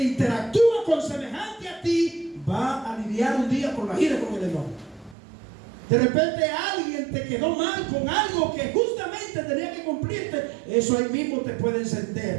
con semejante a ti, va a lidiar un día con la ira y con el enojo. De repente alguien te quedó mal con algo que justamente tenía que cumplirte. Eso ahí mismo te puede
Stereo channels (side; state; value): left; drops out; at 5.2 s